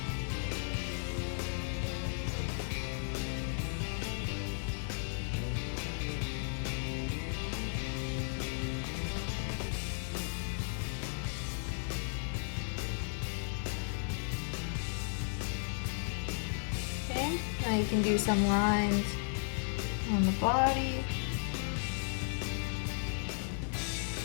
Okay, now you can do some lines on the body.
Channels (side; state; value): right; silent; digital silence